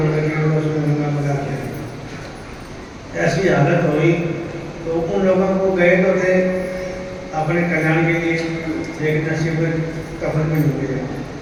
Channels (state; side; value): identical; both; correlation 1.00